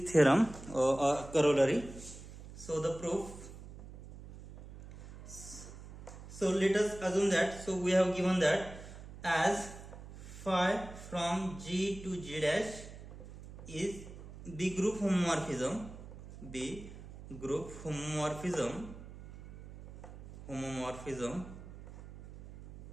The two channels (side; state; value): right; noise; hum, 14 dB below the sound